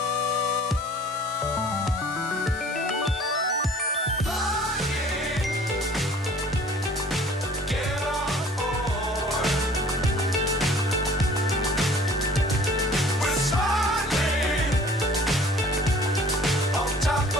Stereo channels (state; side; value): normal; both; correlation 0.51